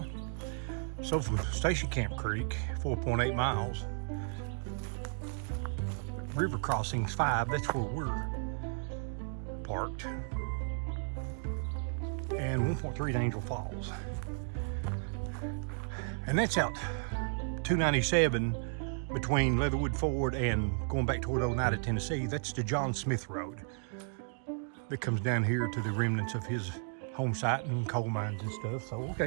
So from Station Camp Creek, 4.8 miles. River crossings 5, that's where we're parked. And 1.3 to Angel Falls. And that's out 297 between Leatherwood Ford and going back toward Oneida, Tennessee. That's the John Smith Road that comes down here to the remnants of his home site and coal mines and stuff. So,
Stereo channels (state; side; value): silent; left; 55 dB below the other